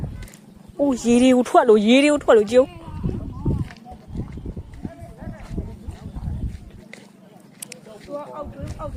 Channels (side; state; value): both; identical; correlation 1.00